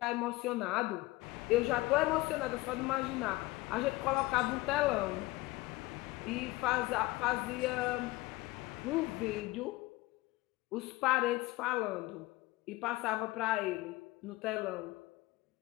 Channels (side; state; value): right; quieter; 20.0 dB